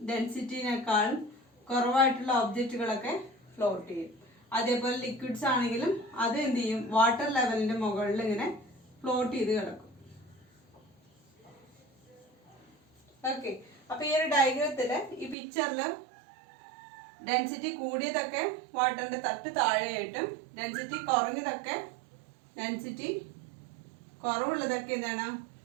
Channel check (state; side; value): drops out; left; at 15.4 s